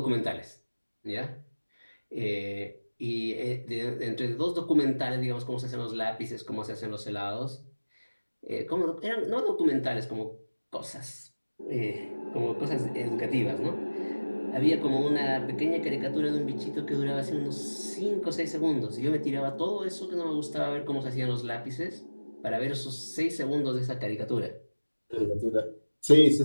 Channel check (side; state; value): both; inverted; correlation -1.00